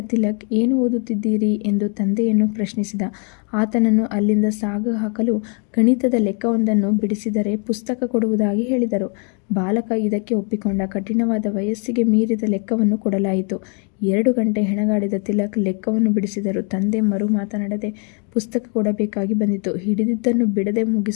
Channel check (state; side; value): quieter; right; 38.3 dB